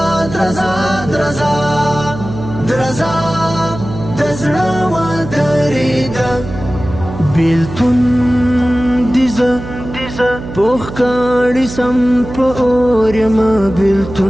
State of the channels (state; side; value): noise; right; hum, 11 dB below the sound